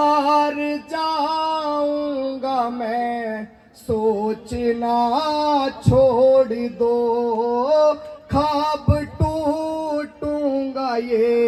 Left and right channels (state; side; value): identical; both; correlation 1.00